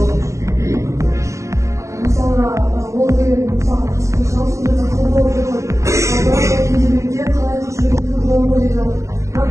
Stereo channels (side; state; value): left; late; 0.15 ms